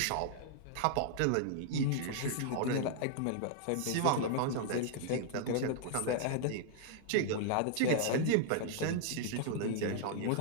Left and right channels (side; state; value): both; different; correlation -0.01